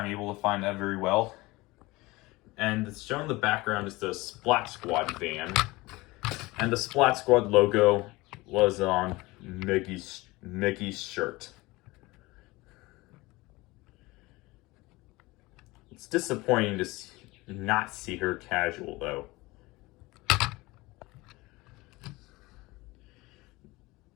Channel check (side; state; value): right; quieter; 21.5 dB